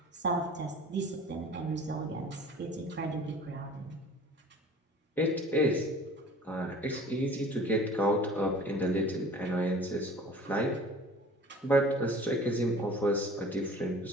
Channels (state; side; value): normal; both; correlation 0.45